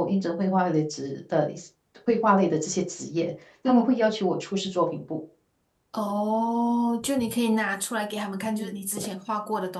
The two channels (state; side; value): identical; both; correlation 1.00